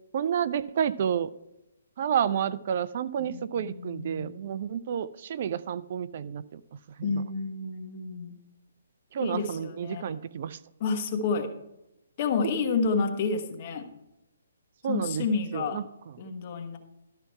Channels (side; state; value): both; inverted; correlation -0.54